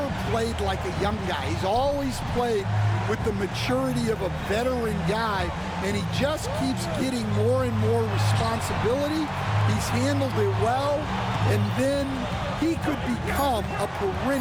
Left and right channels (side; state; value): both; identical; correlation 1.00